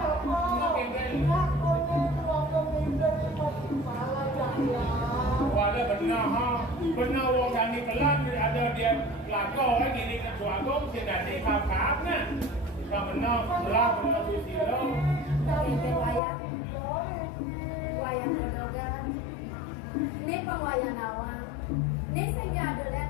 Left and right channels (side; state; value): right; drops out; at 16.2 s